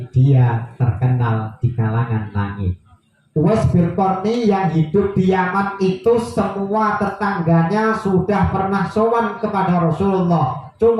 dia terkenal di kalangan langit. Uwais bin Qarni yang hidup di Yaman itu semua tetangganya sudah pernah sowan kepada Rasulullah.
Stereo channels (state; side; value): identical; both; correlation 1.00